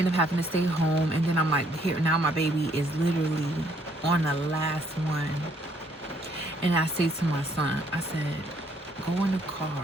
up having to stay home, and then I'm like, here now my baby is literally on the last one. And I say to my son, I said, go in the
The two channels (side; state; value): both; normal; correlation 0.67